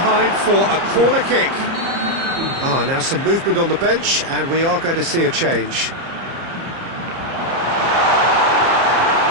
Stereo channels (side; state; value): left; late; 30 ms